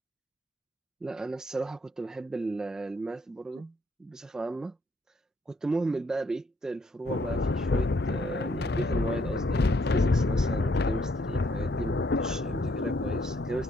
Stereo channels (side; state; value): both; normal; correlation 0.69